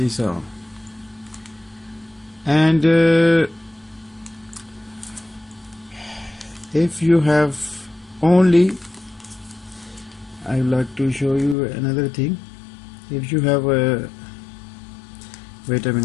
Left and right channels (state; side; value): drops out; right; at 11.6 s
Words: all. And if you have only, I would like to show you another thing. If you have a, wait a